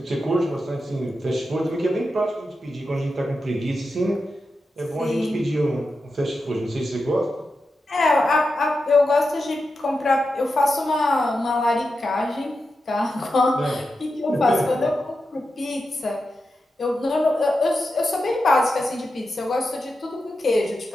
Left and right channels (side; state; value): both; normal; correlation 0.89